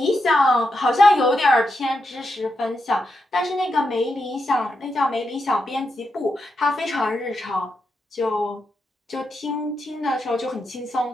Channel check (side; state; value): both; normal; correlation 0.85